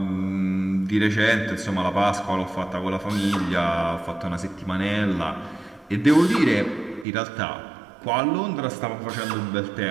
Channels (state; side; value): drops out; left; at 7.1 s